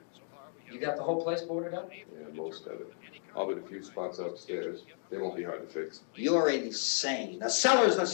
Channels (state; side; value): silent; right; 55 dB below the other